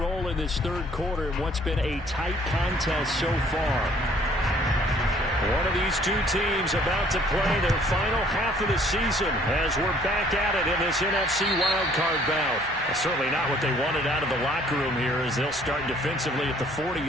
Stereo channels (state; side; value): normal; both; correlation 0.59